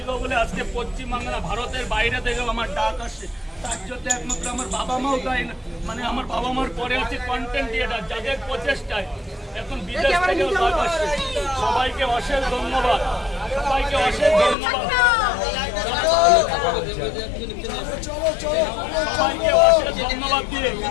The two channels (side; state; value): right; drops out; at 14.6 s